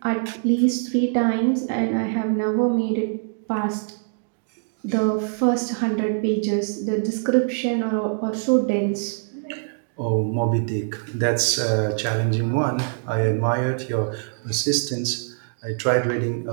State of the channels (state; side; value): silent; left; digital silence